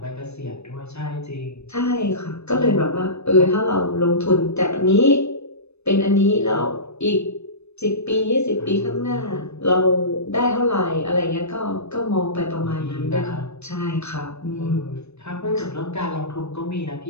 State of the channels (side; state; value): right; late; 0.81 ms